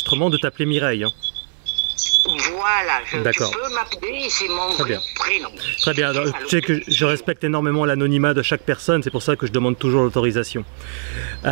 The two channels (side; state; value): left; silent; digital silence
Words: de t'appeler Mireille. Hein. Voilà, tu D'accord. peux m'appeler, c'est mon Très bien. prénom. Très bien. Alors, tu sais que je respecte énormément l'anonymat de chaque personne, c'est pour ça que je demande toujours l'autorisation.